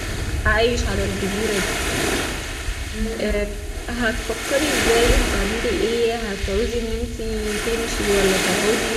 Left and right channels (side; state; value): both; identical; correlation 1.00